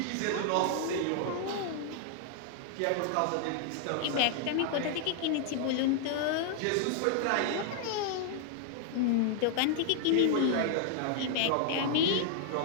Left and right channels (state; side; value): different; both; correlation 0.00